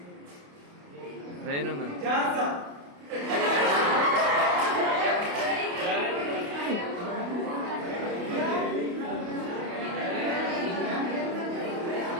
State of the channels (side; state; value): left; late; 28 ms